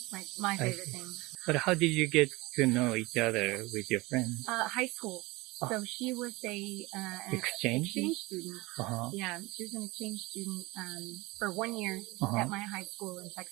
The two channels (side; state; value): left; quieter; 22.3 dB